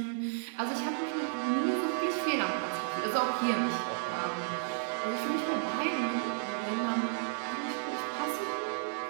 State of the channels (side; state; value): left; silent; 56 dB below the other